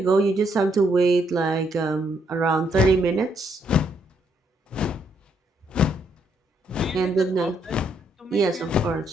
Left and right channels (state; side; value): normal; both; correlation 0.74